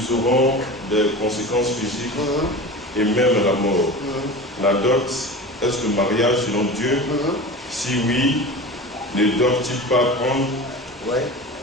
auront des conséquences physiques et même la mort. La dot, est-ce le mariage selon Dieu? Si oui, ne doivent-ils pas prendre? Oui,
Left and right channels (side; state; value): both; normal; correlation 0.32